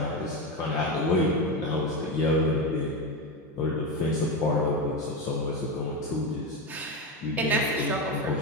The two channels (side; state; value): both; normal; correlation 0.15